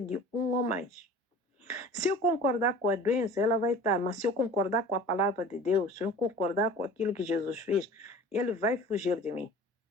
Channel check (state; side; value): normal; both; correlation 0.42